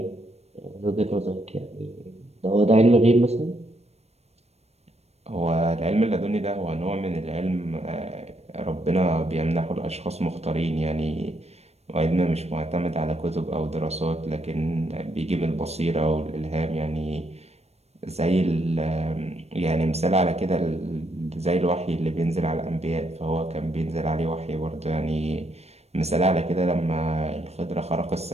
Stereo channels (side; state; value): left; late; 0.31 ms